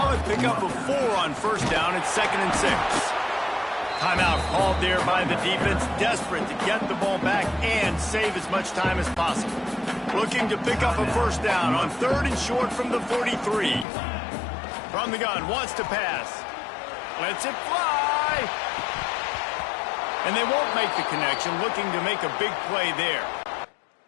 pickup of 4 on 1st down. It's 2nd and 6. Timeout called there by the defense, desperate to get the ball back and save as much time as possible. Looking to pick up a 1st down on 3rd and short from the 43. From the gun, wants to pass. Lets it fly. And they won't make the connection, looking to make a big play there.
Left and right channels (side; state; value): right; drops out; at 13.9 s